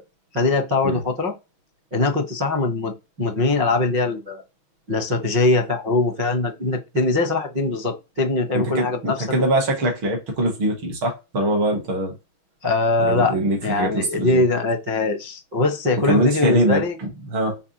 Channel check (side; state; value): left; late; 6.2 ms